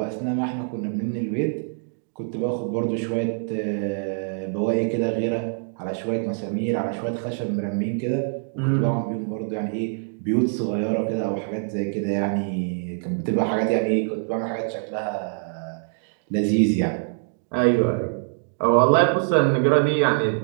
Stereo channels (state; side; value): silent; left; digital silence